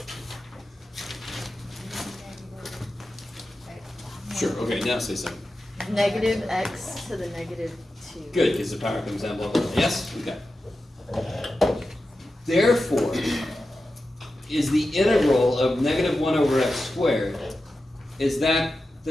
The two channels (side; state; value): both; normal; correlation 0.92